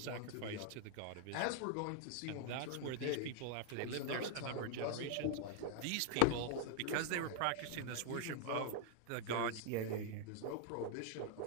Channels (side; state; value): both; different; correlation 0.00